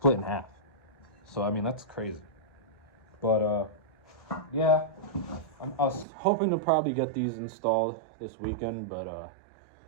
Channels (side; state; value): left; drops out; at 6.1 s